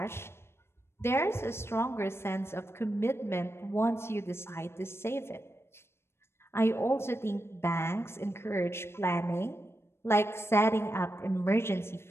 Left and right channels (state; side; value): late; right; 0.12 ms